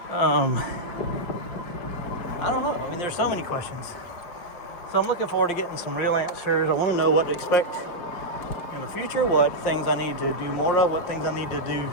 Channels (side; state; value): right; late; 5.4 ms